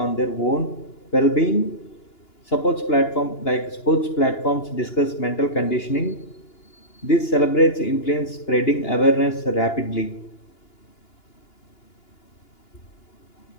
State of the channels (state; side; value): late; right; 2.9 ms